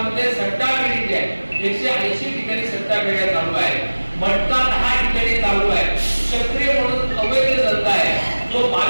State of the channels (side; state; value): both; inverted; correlation -1.00